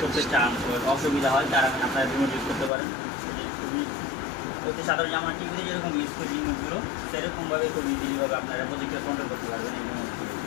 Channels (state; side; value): drops out; right; at 2.7 s